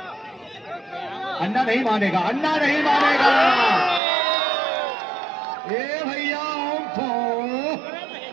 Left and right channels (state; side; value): drops out; left; at 4.0 s